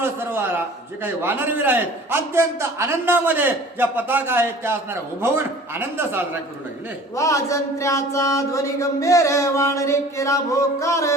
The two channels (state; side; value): normal; both; correlation 0.46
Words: सर्व जे काही वानरवीर आहेत अत्यंत आनंदामध्ये ज्या पताका आहेत त्या असणाऱ्या उभवून आनंद साजरा करू लागले. वाजंत्र्याचा ध्वनी गंभीर वाणरे केला भोकार